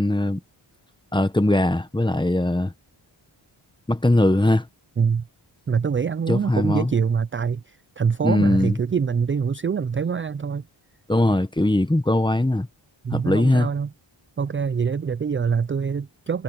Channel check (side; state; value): both; normal; correlation 0.80